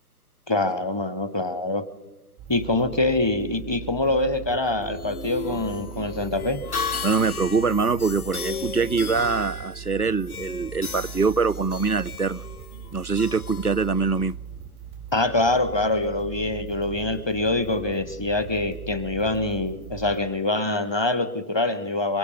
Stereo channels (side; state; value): right; late; 1.2 ms